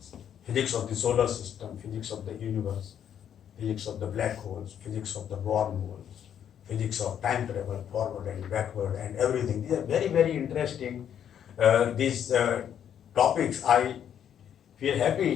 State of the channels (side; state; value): right; quieter; 9.3 dB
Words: physics of the solar system, physics of the universe, physics of the black holes, physics of the wormholes, physics of time travel, forward and backward, and everything. These are very, very interesting. These topics I feel